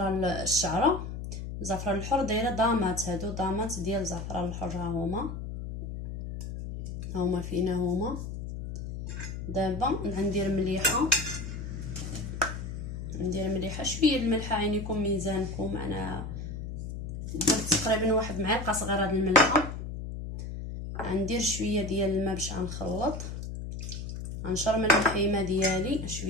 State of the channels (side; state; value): left; noise; hum, 7 dB below the sound